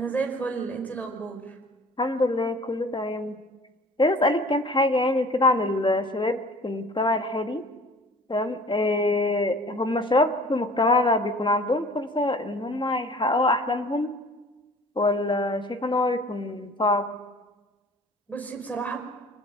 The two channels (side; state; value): both; normal; correlation 0.47